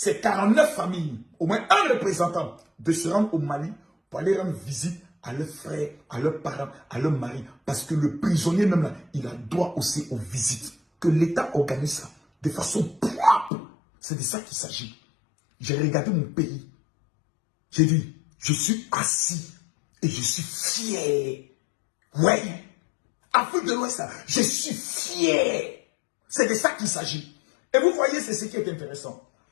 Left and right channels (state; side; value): drops out; right; at 13.5 s